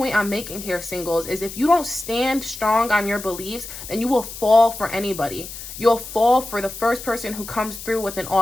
I'm making here, singles, is if you don't stand strong on your beliefs, then you will fall for anybody. You'll fall for the first person who comes through with an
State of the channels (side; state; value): left; noise; hiss, 11 dB below the sound